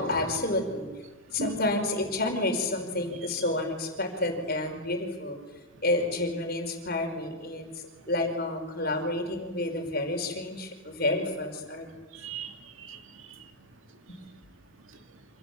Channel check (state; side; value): normal; both; correlation -0.05